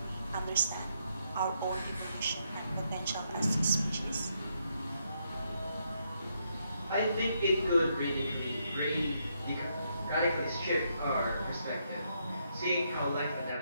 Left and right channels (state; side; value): inverted; both; correlation -0.77